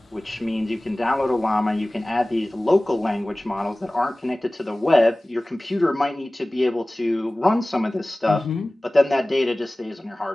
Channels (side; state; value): both; normal; correlation 0.98